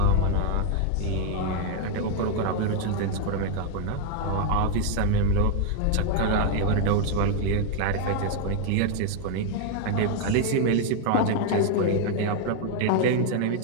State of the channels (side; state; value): both; different; correlation 0.00